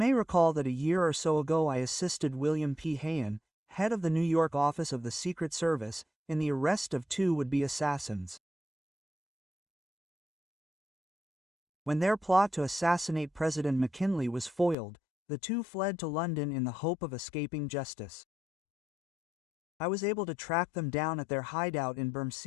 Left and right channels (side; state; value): right; drops out; at 14.8 s